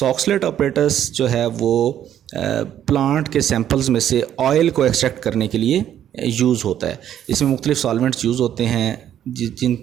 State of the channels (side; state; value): left; quieter; 10.6 dB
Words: apparatus जो है वो प्लांट के सैंपल्स में से ऑयल को एक्सट्रैक्ट करने के लिए यूज़ होता है। इसमें मुख्तलिफ सॉल्वेंट्स यूज़ होते हैं